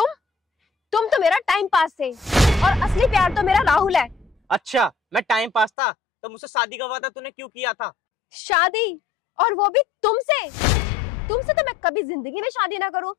तो मेरा टाइम पास थे और असली प्यार तो मेरा राहुल है। अच्छा मैं टाइम पास था, तो मुझसे शादी का वादा तूने क्यों किया था? शादी? और वो भी तुमसे? तुमसे तो मैं कभी जिंदगी में शादी ना करूं।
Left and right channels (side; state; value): right; drops out; at 5.7 s